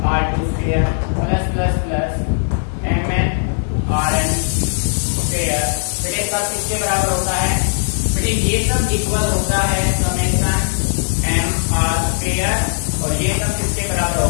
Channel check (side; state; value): right; silent; 67 dB below the other